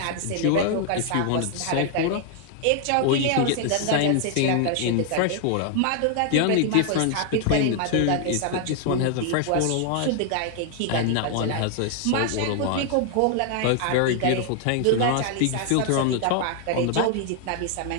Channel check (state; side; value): different; both; correlation 0.00